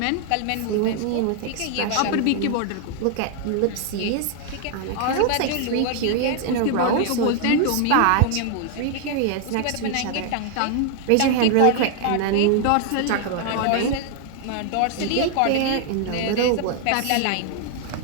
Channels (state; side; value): different; both; correlation 0.00